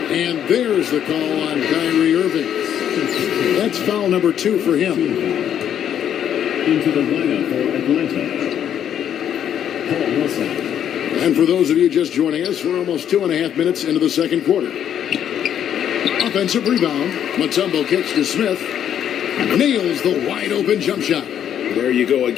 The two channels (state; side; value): quieter; right; 9.6 dB